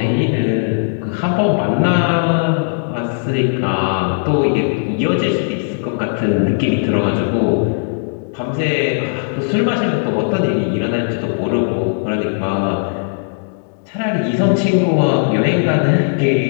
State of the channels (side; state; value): right; silent; digital silence